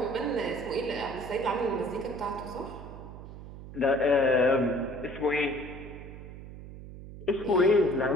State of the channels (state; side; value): noise; right; hum, 13 dB below the sound